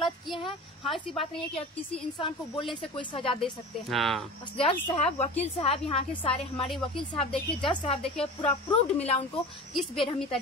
किए हैं, हाँ, ऐसी बात नहीं है कि आप किसी इंसान को बोलने से कोई सजा दे सकते हैं। हाँ। जज साहब, वकील साहब, यहाँ के सारे हमारे वकील साहब देखिए, जज साहब देखिए, पूरा प्रूव्ड मिला उनको किस बेरहमी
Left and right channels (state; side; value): normal; both; correlation 0.35